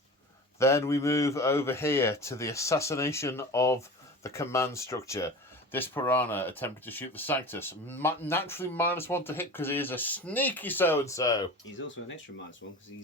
Then we move over here to the assassination of the command structure. This piranha attempted to shoot the Sanctus. Naturally -1 to hit because he is a sneaky so-and-so. He's also an extra -1 because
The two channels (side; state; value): both; normal; correlation 0.34